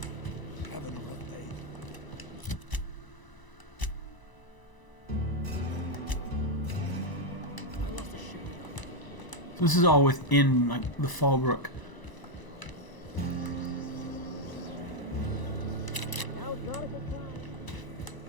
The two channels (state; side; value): late; right; 1.0 ms